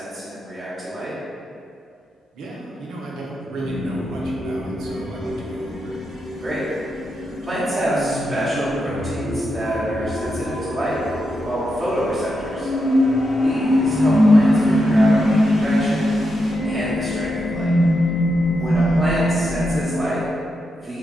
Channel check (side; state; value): both; normal; correlation 0.84